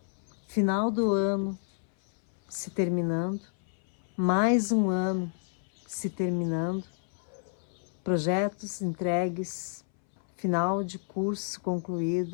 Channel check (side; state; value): right; silent; 58 dB below the other